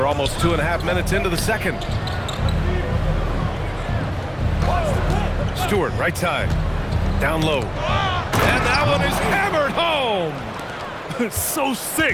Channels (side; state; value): both; identical; correlation 1.00